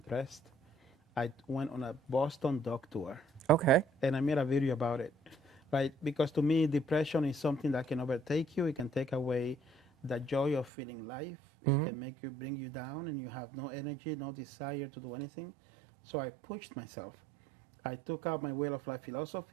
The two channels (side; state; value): left; drops out; at 10.7 s